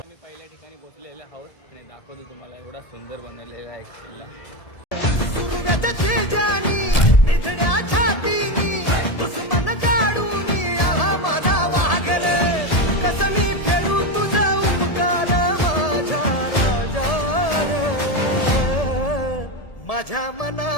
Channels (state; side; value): late; right; 1.7 ms